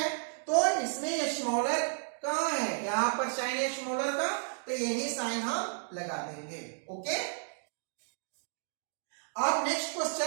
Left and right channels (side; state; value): left; silent; digital silence